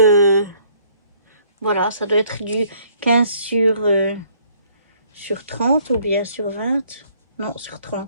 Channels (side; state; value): both; inverted; correlation -0.61